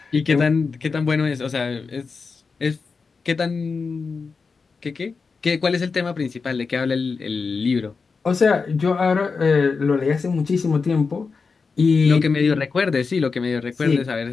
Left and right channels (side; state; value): right; quieter; 4.8 dB